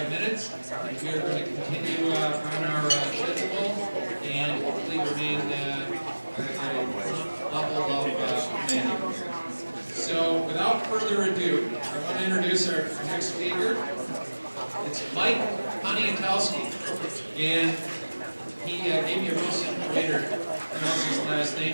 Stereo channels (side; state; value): both; inverted; correlation -1.00